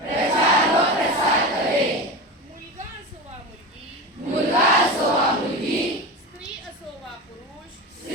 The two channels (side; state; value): both; normal; correlation 0.25